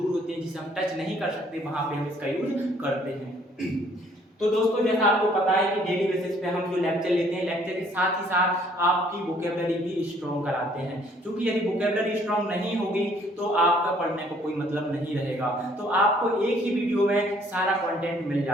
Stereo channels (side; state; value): both; normal; correlation 0.61